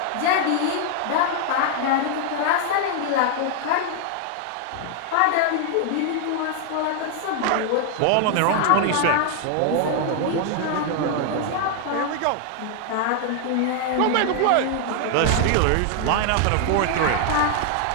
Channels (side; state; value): both; different; correlation 0.00